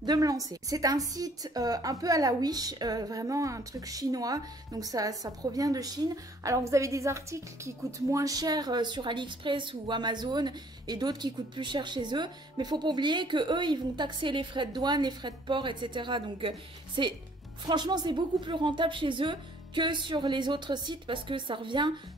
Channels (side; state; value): both; normal; correlation 0.59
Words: de me lancer. C'est un site un peu à la Wish, vraiment un truc chinois, donc ça provient de Chine. Alors vous avez des articles qui coûtent moins cher sur AliExpress ou Amazon et d'autres qui coûtent plus cher chez eux, mais faut pas oublier que eux ils vont taxer les frais de douane, les frais de port, etc. Donc franchement c'est beaucoup plus rentable chez eux que sur les autres sites parce que ça revient